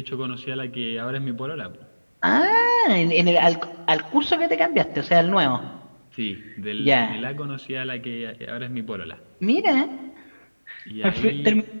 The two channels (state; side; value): inverted; both; correlation -1.00